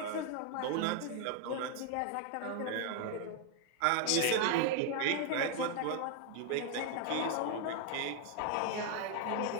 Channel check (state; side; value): different; both; correlation 0.00